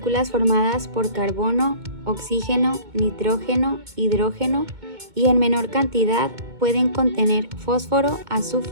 formadas por carbono, oxígeno, nitrógeno, hidrógeno y en menor cantidad pueden contener fósforo,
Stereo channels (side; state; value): left; late; 2.2 ms